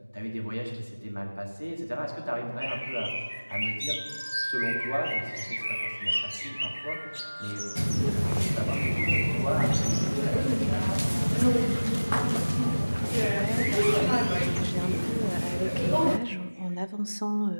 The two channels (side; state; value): both; inverted; correlation -1.00